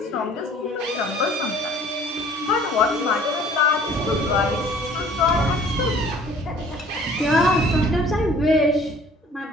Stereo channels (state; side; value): normal; both; correlation 0.52